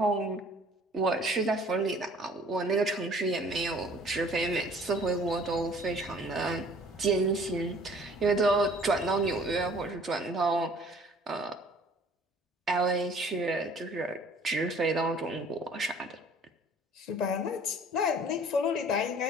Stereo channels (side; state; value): both; normal; correlation 0.53